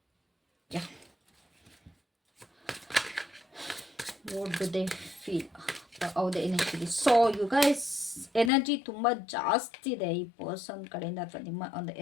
Yeah, what do they feel? ಹೌದೇ energy. So you guys, energy ತುಂಬ ಜಾಸ್ತಿ ಇದೆ ಈ ಪರ್ಸನ್ ಕಡೆಯಿಂದ, ಅಥವಾ ನಿಮ್ಮ ಒಂದು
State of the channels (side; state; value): right; drops out; at 8.5 s